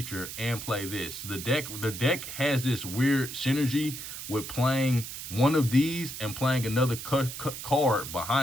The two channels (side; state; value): right; noise; hiss, 9 dB below the sound